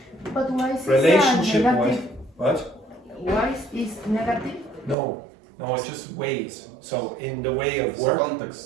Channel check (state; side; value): drops out; left; at 5.0 s